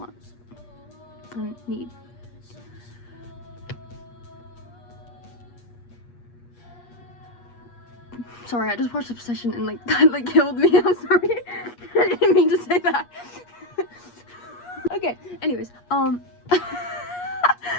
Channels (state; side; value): late; right; 8.4 ms